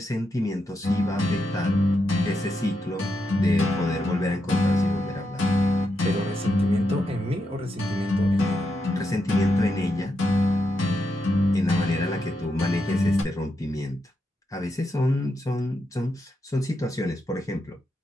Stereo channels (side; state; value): both; normal; correlation 0.84